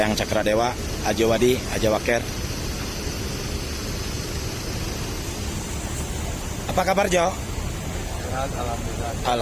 Cakradewa, Ajawadi, Ajawaker. Apa kabar Jo? Sehat, alhamdulillah.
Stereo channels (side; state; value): both; identical; correlation 1.00